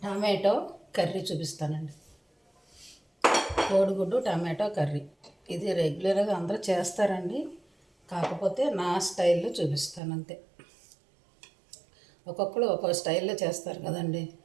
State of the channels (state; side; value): drops out; left; at 10.0 s